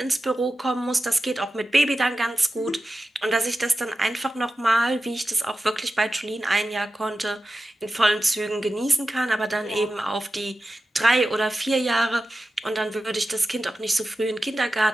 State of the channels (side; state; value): both; normal; correlation 0.93